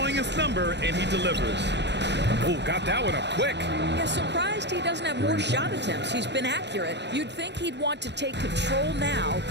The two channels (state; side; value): late; left; 0.50 ms